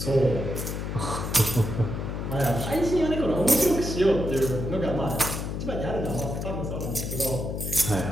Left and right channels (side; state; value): left; noise; hum, 4 dB below the sound